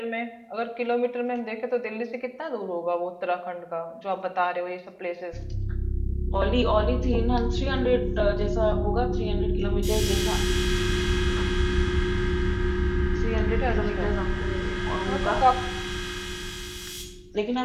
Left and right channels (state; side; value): identical; both; correlation 1.00